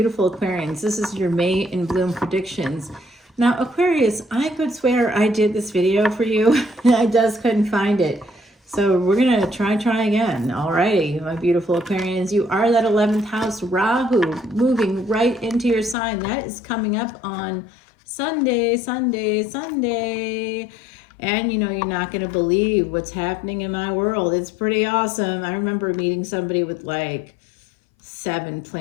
Aquarians. This is your May in Bloom predictions. Now, Aquarius, I could swear I did this video for you. I just couldn't find it. So we're going to try again. Alrighty, my beautiful Aquarians. You are that 11th house, Rahu, moving right into your sign. That is coming up on Sunday. And you know, you're not going to believe what's happening in my world. It's pretty awesome. I remember meeting somebody with like 7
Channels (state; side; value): drops out; right; at 16.0 s